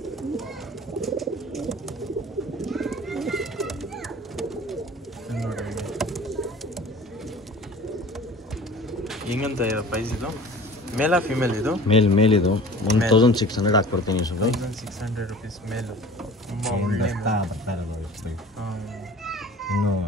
ಹೆಂಗಂತ ಪ್ರೈಸ್ ಇದು? ಮೇಲಾ ಫಿಮೇಲ್ ಇದು? ಮೇಲಿದು 1600 ಹಾಕ್ಕೊಡ್ತೀನಿ ಸುಮ್ಮನೆ. 1600 ರುಪೀಸ್ ಮೇಲು. ತುಂಬ ಒಳ್ಳೆ ಬರ್ತಾ ಇರೋದು ಇನ್ನೂ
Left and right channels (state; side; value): normal; both; correlation 0.44